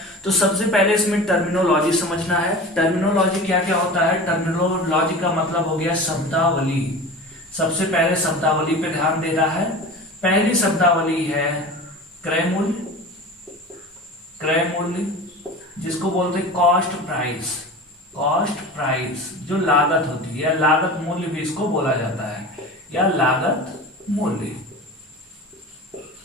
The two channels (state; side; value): normal; both; correlation 0.34